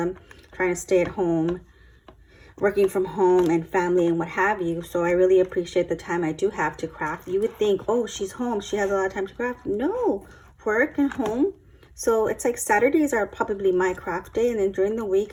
trying to stay at home, working from home, and family and what have you. So I really appreciate the time I do have to craft. You would think, oh, she's home, she has a lot of time to craft. No, work and home. So it's like Saturdays are probably my craft day, and then during the week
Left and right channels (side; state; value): both; identical; correlation 1.00